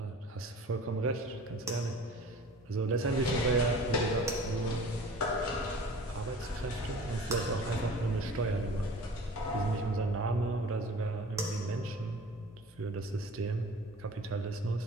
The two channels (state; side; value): normal; both; correlation 0.43